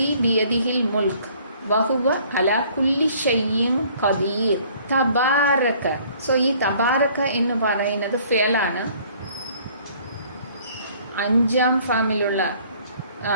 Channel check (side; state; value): both; inverted; correlation -0.57